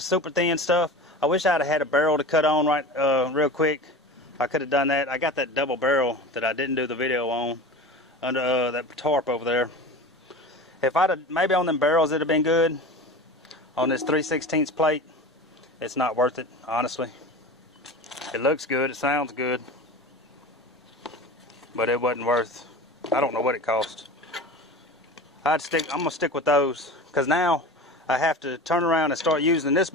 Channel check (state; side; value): normal; both; correlation 0.33